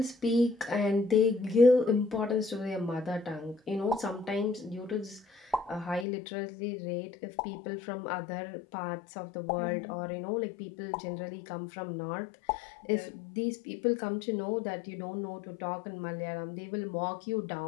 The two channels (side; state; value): right; drops out; at 6.1 s